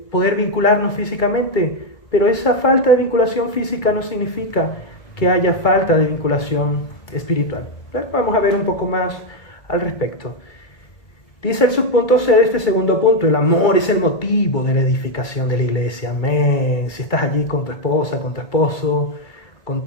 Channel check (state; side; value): late; right; 2.3 ms